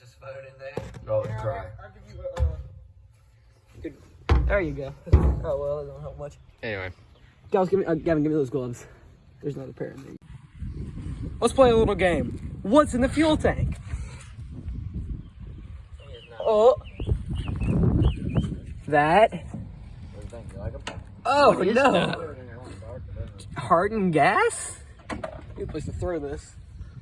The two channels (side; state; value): both; identical; correlation 1.00